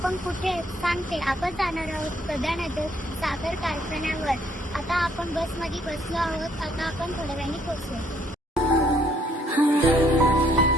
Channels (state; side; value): normal; both; correlation 0.67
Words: पण कुठे सांगते, आपण जाणार आहोत प्रधानगर साखर कारखान्यावर. आता आपण बसमध्ये बसलो आहोत. आता आपण थोड्या वेळाने पोहोचू.